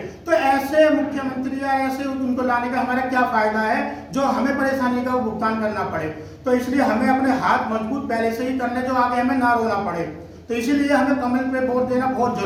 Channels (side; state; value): both; identical; correlation 1.00